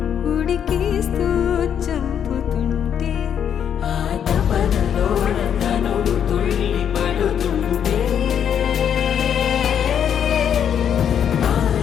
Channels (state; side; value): quieter; right; 8.6 dB